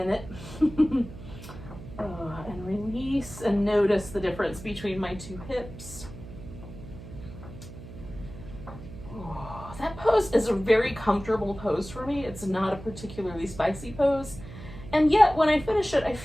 and release and notice the difference between my 2 hips. That pose is a very comfortable pose for me. It's not a particularly spicy pose. And yet when I finish it, I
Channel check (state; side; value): noise; right; hum, 14 dB below the sound